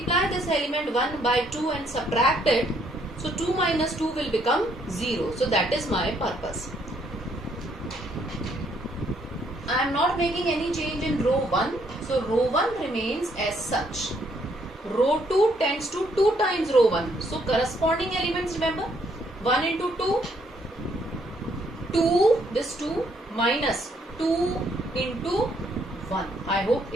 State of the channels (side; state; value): both; normal; correlation 0.69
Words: this element 1 by 2 and subtract it, so 2 minus 2 will become 0. So that is my purpose. I am not making any change in row 1. So row 1 remains as such. Row 2 tends to 2 times row 1. So corresponding elements, remember, 1 into 2, 2, this 2 minus 2 into 1. I hope